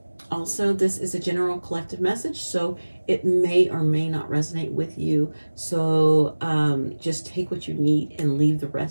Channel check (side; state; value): both; inverted; correlation -1.00